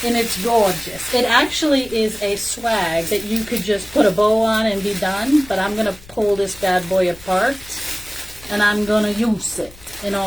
And it's gorgeous. It actually is a swag that you could just put a bow on and be done. But I'm going to pull this bad boy apart. And I'm going to use it in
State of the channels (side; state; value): left; noise; rumble, 21 dB below the sound